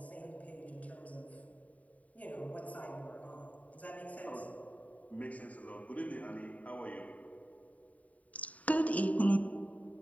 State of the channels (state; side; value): late; right; 0.069 ms